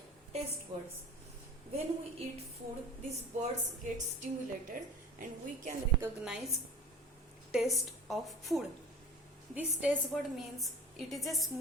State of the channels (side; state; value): both; normal; correlation 0.40